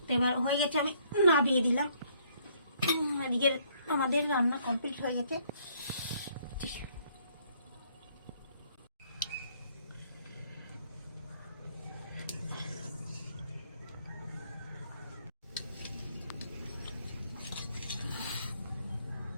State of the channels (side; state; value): both; inverted; correlation -0.66